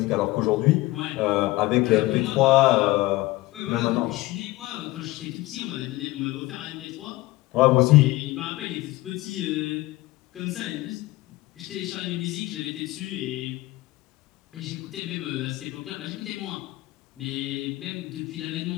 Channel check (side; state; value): right; quieter; 19.2 dB